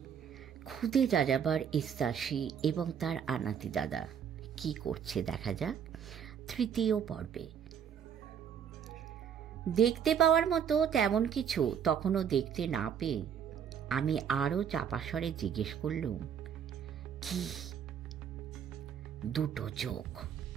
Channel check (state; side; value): quieter; left; 8.1 dB